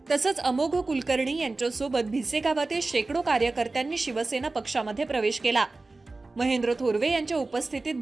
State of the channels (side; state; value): left; quieter; 3.4 dB